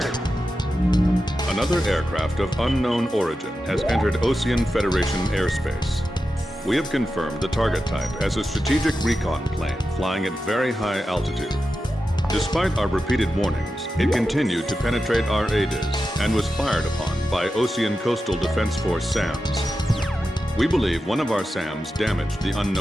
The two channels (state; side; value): normal; both; correlation 0.91